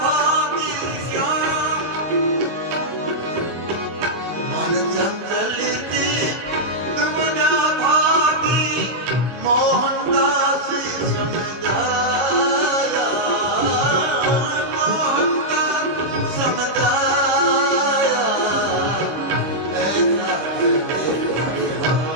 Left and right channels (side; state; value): left; late; 25 ms